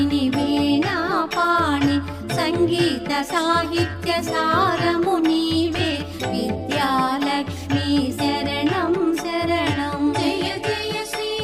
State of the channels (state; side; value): identical; both; correlation 1.00